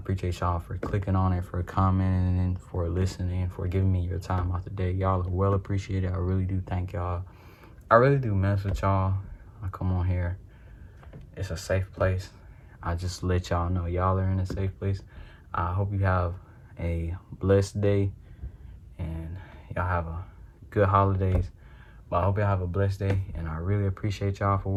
y'all for clicking on it, for commenting, for listening, for giving me your time out the day. Y'all are well appreciated. I really do thank y'all. I really do mess with y'all. I come on here. It's a safe place. I just let y'all know y'all are in a safe place. I hope you have a blessed day and y'all have a good holidays. But I hope y'all have a blessed day, and I really appreciate y'all for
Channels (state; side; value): identical; both; correlation 1.00